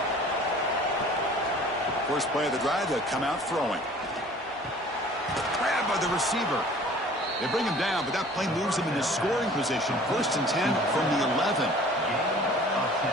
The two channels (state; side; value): normal; both; correlation 0.49